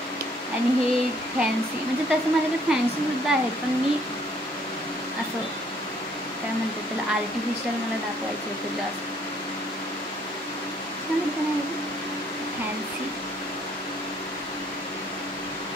आणि हे फॅन्सी म्हणजे तसं माझ्याकडे फॅन्सीसुद्धा आहेत, पण मी असं काय म्हणतात त्याला आर्टिफिशियल मला दाखवायचं होतं जास्त. छान होतं ना फॅन्सी.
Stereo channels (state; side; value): normal; both; correlation 0.64